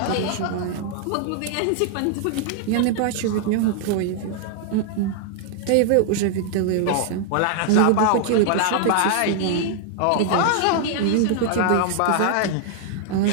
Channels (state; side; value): different; both; correlation -0.01